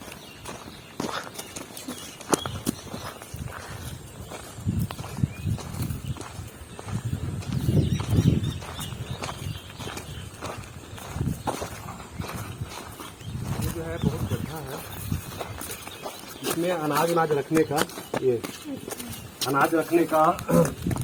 ये जो है बहुत गड्ढा है, इसमें अनाज रखने का, ये अनाज रखने का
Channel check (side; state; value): both; identical; correlation 1.00